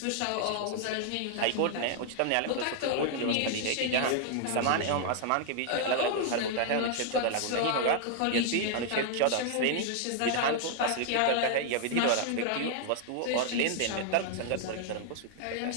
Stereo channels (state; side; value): different; both; correlation -0.01